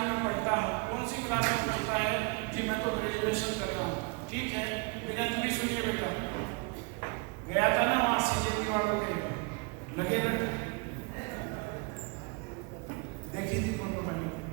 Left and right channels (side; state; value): left; quieter; 30.4 dB